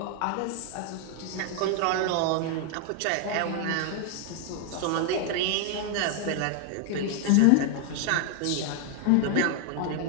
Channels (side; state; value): both; different; correlation 0.00